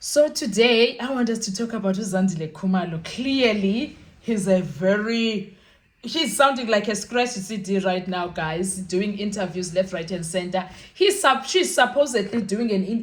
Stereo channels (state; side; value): identical; both; correlation 1.00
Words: today, I want us to talk about Zandile Khumalo. Clearly, he's sounding like a scratch CD right now, guys, doing interviews left, right, and center. She's supposedly